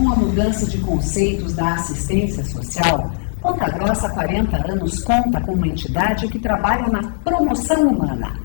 a mudança de conceitos da assistência social, Ponta Grossa há 40 anos conta com uma entidade que trabalha na promoção humana.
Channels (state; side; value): silent; right; digital silence